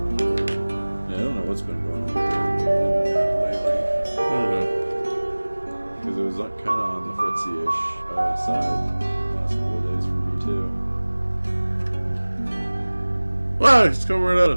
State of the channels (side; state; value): both; inverted; correlation -1.00